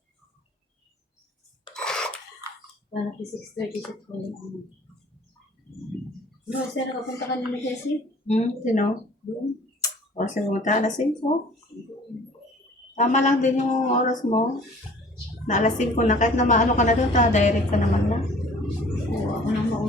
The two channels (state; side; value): normal; both; correlation 0.50